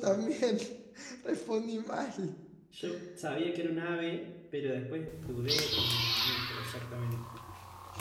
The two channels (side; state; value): both; identical; correlation 1.00